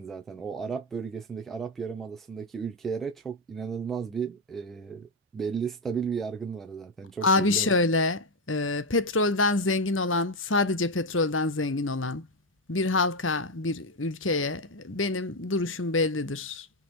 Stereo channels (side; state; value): both; normal; correlation 0.07